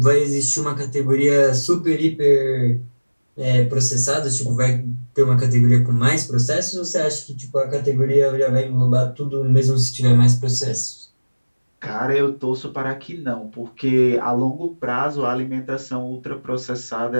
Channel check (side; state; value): both; inverted; correlation -1.00